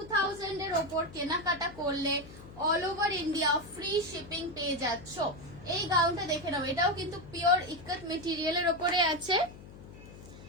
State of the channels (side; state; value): left; noise; hum, 17 dB below the sound